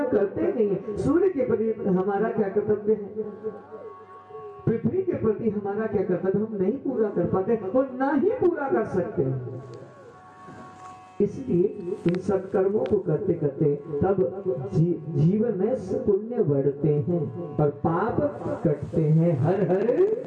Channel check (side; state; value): both; identical; correlation 1.00